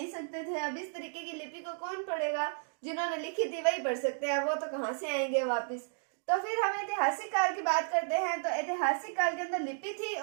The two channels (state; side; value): silent; left; digital silence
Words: सकते थे। अब इस तरीके की लिपि को कौन पढ़ेगा? जिन्होंने लिखी थी वही पढ़ सकते हैं, वो तो कहाँ से आएंगे वापिस। तो फिर हम ऐतिहासिक काल की बात करते हैं। तो ऐतिहासिक काल के अंदर लिपि थी